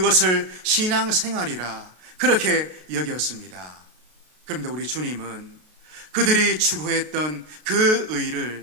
신앙생활이라 그렇게 여겼습니다. 그런데 우리 주님은 그들이 추구했던 그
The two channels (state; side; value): late; left; 33 ms